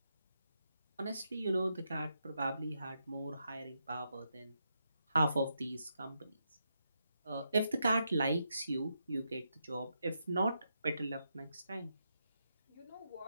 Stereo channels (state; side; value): inverted; both; correlation -0.83